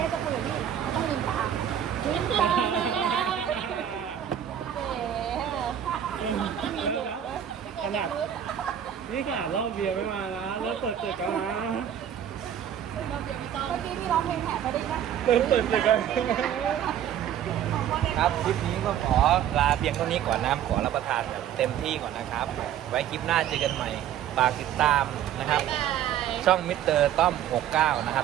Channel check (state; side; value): quieter; left; 10.1 dB